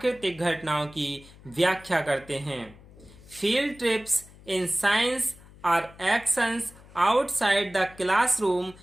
घटनाओं की व्याख्या करते हैं। Field trips in science are actions outside the classroom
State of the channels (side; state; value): left; noise; hum, 22 dB below the sound